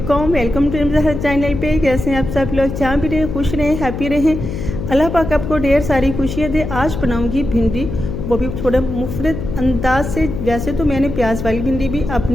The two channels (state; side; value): noise; left; hum, 6 dB below the sound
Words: वेलकम टू ज़हर चैनल पे। कैसे हैं आप सब लोग? जहाँ भी रहें खुश रहें, हैप्पी रहें। अल्लाह पाक आपको ढेर सारी खुशियाँ दे। आज बनाऊंगी भिंडी, वो भी थोड़ा मुफरत अंदाज से। वैसे तो मैंने प्याज वाली भिंडी भी